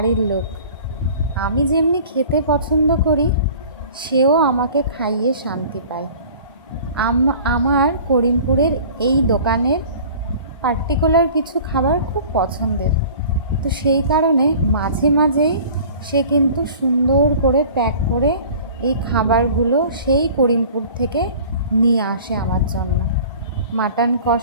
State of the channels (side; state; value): both; inverted; correlation -0.45